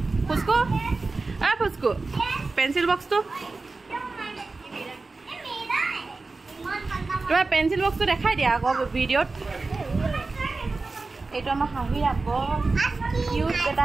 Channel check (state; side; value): quieter; left; 3.7 dB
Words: ফুসকু অ ফুসকু পেন্সিল বক্সটো তোমাৰ পেন্সিল বক্সটো দেখাই দিয়া আকৌ ভিডিঅ'ত এইটো আমাৰ হাঁহি আকৌ কিউট বেটা